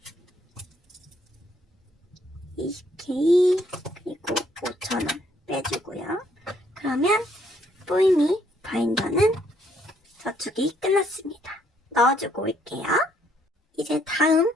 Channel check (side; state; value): both; normal; correlation 0.69